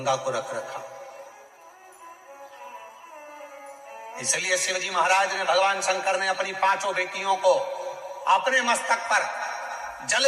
को रख रखा। इसलिए शिवजी महाराज ने, भगवान शंकर ने अपनी 5 बेटियों को अपने मस्तक पर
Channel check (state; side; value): identical; both; correlation 1.00